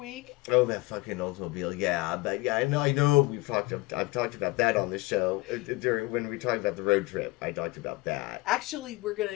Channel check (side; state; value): right; quieter; 22.1 dB